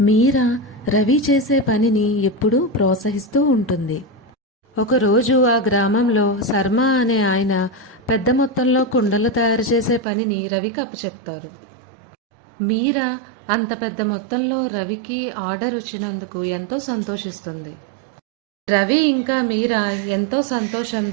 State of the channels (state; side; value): drops out; left; at 10.1 s